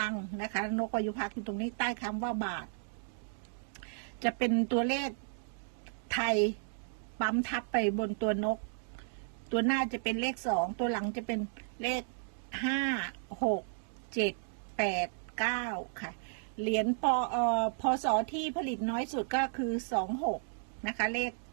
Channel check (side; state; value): left; silent; digital silence